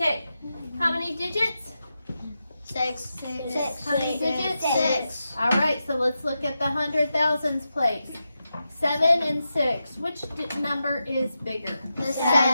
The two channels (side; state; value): both; inverted; correlation -0.89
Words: how many digits? 6. How many digits? 6. All right, so let's look at the 100,000s place. 7 and 6. Which number is bigger? The